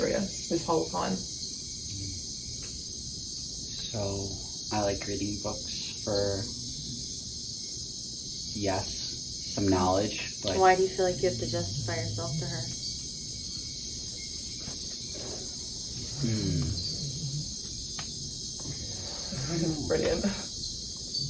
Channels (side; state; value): both; identical; correlation 1.00